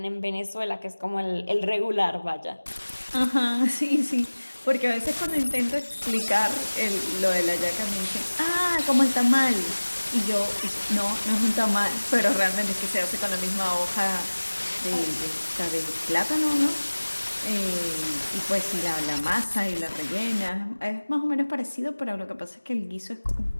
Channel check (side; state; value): both; inverted; correlation -1.00